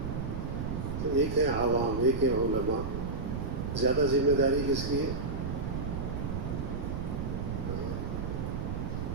تو ایک ہے عوام، ایک ہے علماء۔ زیادہ ذمہ داری کس کی ہے؟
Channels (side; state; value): right; noise; rumble, 3 dB below the sound